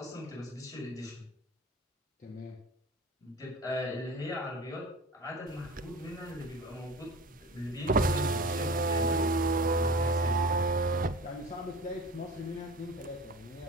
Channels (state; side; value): normal; both; correlation 0.37